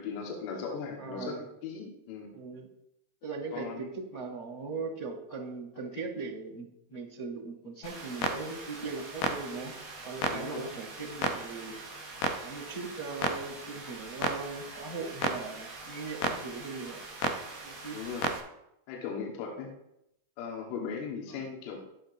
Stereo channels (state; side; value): late; right; 21 ms